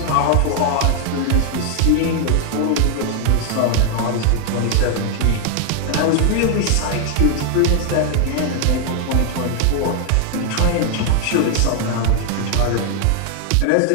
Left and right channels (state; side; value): different; both; correlation 0.00